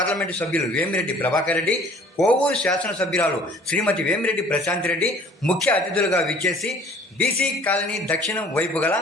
సభ్యులు వేమిరెడ్డి ప్రభాకర్ రెడ్డి, కోవూరు శాసనసభ్యురాలు శ్రీమతి వేమిరెడ్డి ప్రశాంత్ రెడ్డి ముఖ్య అతిథులుగా విచ్చేసి బీసీ కాలనీ దక్షిణం వైపు గల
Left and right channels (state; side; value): normal; both; correlation 0.53